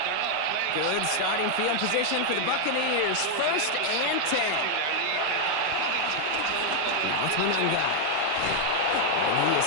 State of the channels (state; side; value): different; both; correlation 0.00